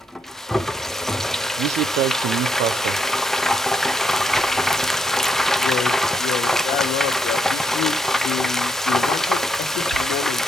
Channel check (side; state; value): both; normal; correlation 0.77